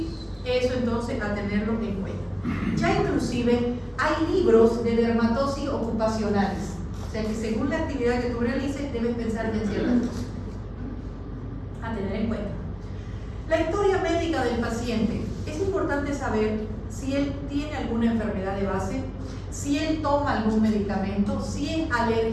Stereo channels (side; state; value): both; identical; correlation 1.00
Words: Eso entonces a tenerlo en cuenta. Ya inclusive hay libros de dermatosis ocupacionales, o sea que según la actividad que tú realices debes pensar en ciertas cosas a tener en cuenta. La historia médica del paciente. Es importante saber si él tiene alguna enfermedad de base, si él toma algún medicamento, si es